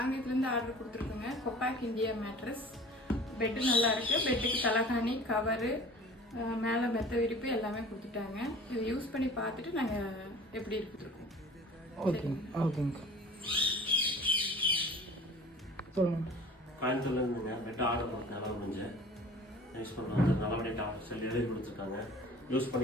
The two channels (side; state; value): both; normal; correlation 0.44